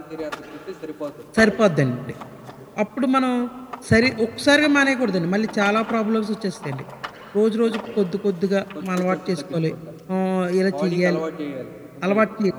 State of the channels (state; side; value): identical; both; correlation 1.00